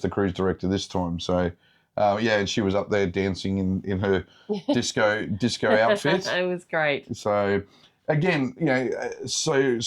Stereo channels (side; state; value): both; identical; correlation 1.00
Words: the cruise director this time. So, and she was up there dancing in her disco outfit. It was great. So, again, so